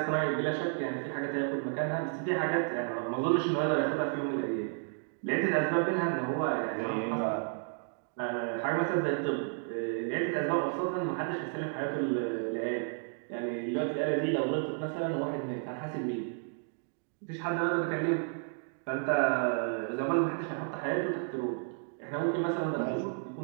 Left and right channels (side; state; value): left; silent; 56 dB below the other